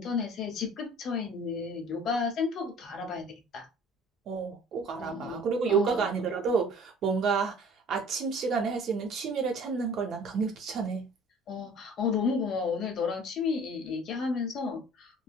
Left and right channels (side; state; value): both; normal; correlation 0.49